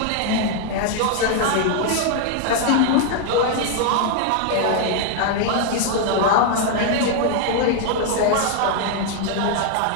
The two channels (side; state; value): both; different; correlation 0.00